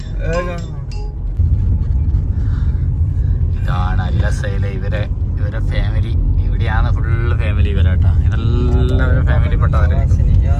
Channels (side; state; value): both; identical; correlation 1.00